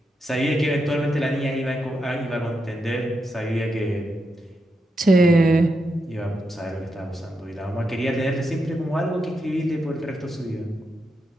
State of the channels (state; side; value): normal; both; correlation 0.84